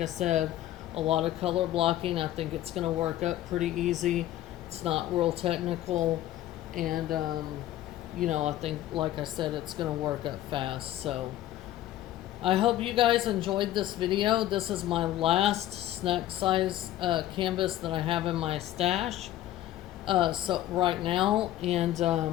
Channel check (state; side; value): quieter; right; 13.4 dB